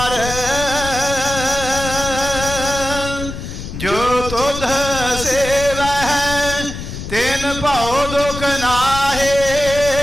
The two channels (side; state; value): left; noise; rumble, 8 dB below the sound